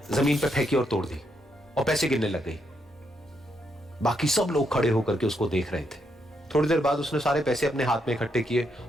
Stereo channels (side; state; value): both; normal; correlation 0.78